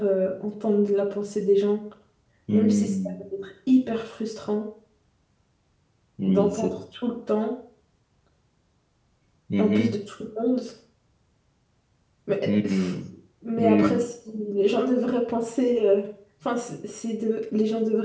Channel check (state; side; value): identical; both; correlation 1.00